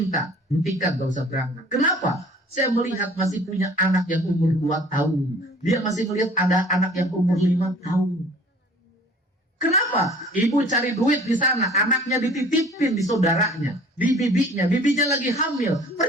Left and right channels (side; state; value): both; normal; correlation 0.50